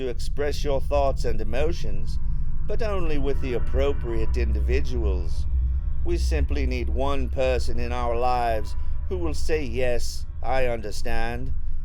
express your thoughts and emotions, but only with the appropriate individuals. We simply need one person in our lives who will say, "Yes, I understand,"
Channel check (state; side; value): identical; both; correlation 1.00